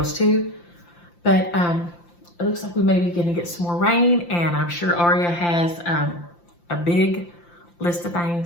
too. But it looks like we may be going to get some more rain. And I'm sure Aria has a big list of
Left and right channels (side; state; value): right; late; 5.8 ms